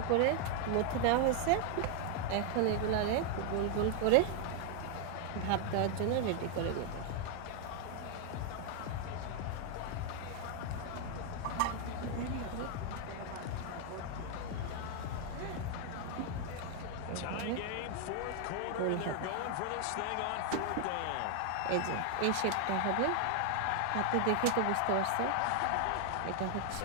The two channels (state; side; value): different; both; correlation 0.00